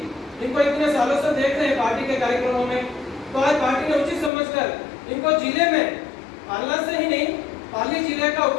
इतने सालों से देख रहे हैं पार्टी के कार्यक्रमों में, तो आज पार्टी ने उचित समझकर इनको जिले में पालना से ही नहीं, पाली जिले का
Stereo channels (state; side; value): drops out; right; at 4.3 s